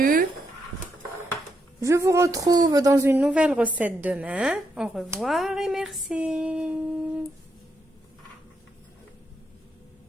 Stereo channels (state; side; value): normal; both; correlation 0.80